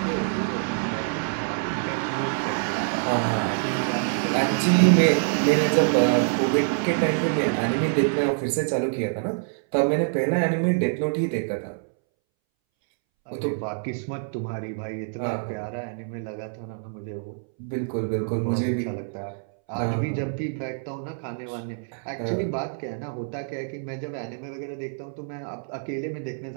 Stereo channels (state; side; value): silent; left; 61 dB below the other